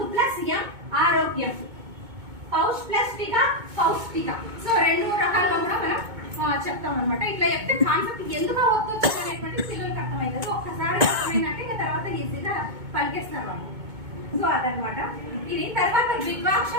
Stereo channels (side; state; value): left; late; 2.2 ms